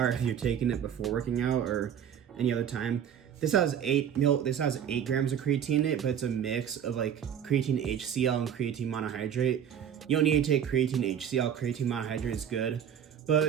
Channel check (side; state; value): left; quieter; 8.9 dB